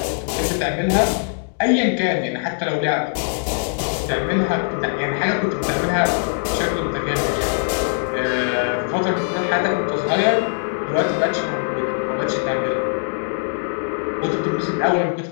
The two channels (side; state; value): right; silent; digital silence